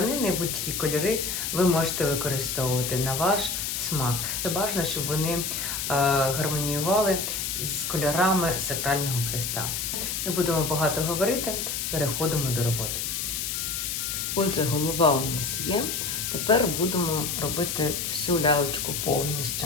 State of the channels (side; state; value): left; noise; hiss, 2 dB below the sound